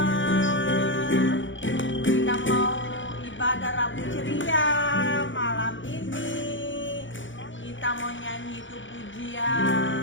Kita mau ibadah Rabu Ceria malam ini. Kita mau nyanyi itu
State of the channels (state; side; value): late; right; 0.56 ms